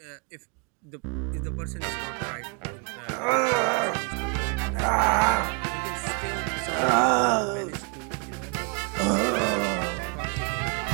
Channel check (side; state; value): left; quieter; 37.2 dB